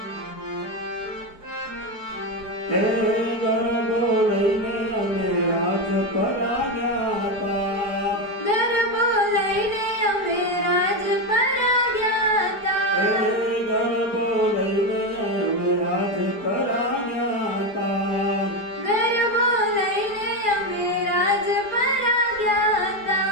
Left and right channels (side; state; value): right; late; 4.8 ms